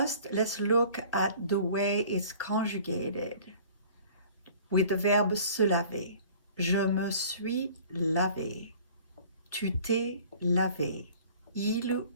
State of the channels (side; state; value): both; inverted; correlation -0.49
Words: let's look at the way it's conjugated. With the verbe se laver. Je me suis lavé. Tu t'es lavé. Il